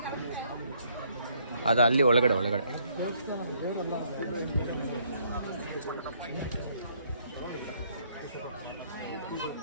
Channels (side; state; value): both; inverted; correlation -0.68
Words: ಅದು ಅಲ್ಲಿ ಒಳಗಡೆ